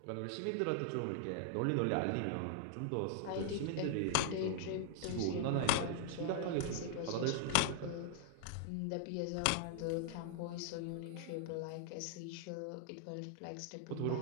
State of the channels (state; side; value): different; both; correlation 0.00